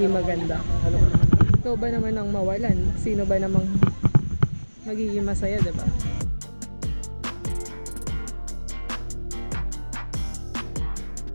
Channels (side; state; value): both; inverted; correlation -1.00